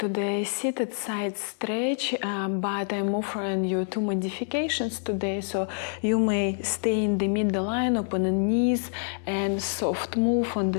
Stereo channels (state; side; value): silent; right; digital silence